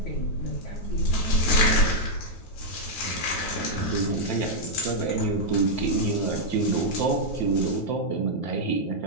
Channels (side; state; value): right; late; 9.3 ms